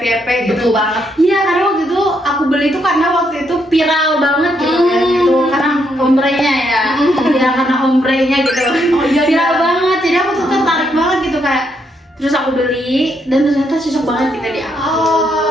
gitu. Betul banget. Iya, karena waktu itu aku beli tuh karena waktu itu viral banget gitu kan gitu karena ombrenya ya. Ya karena ombrenya gitu. Oh, iya, Viral iya. banget. Jadi aku tuh tertarik banget gitu kayak terus aku beli dan ternyata cocok banget kita di aku.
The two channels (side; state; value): both; normal; correlation 0.76